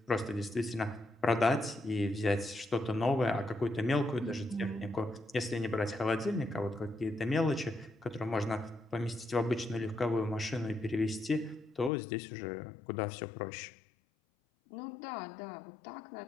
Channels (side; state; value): right; drops out; at 11.9 s